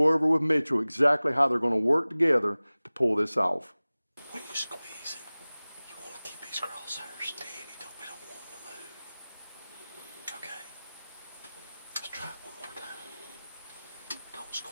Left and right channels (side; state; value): both; inverted; correlation -0.99